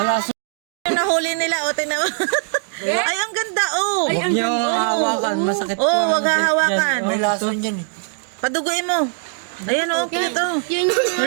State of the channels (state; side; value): silent; left; digital silence